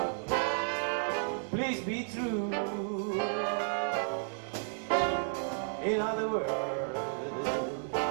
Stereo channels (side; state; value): left; silent; digital silence